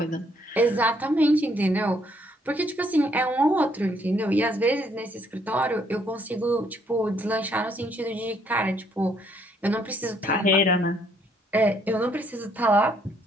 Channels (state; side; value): normal; both; correlation 0.68